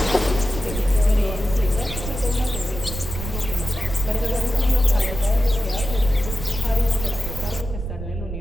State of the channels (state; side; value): noise; right; rumble, 7 dB below the sound